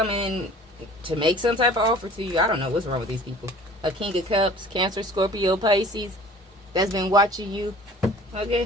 to make some type of offer to you. I don't know what's wrong with these people. A King of Cups, Cancer, Scorpio, Pisces. That's been watching you.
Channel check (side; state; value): both; normal; correlation 0.47